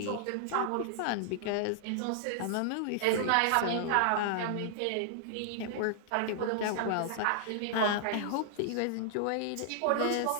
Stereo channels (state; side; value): different; both; correlation -0.01